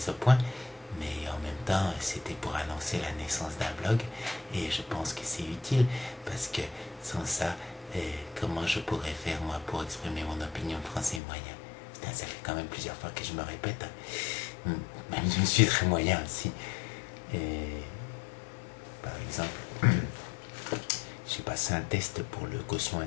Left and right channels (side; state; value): right; drops out; at 11.2 s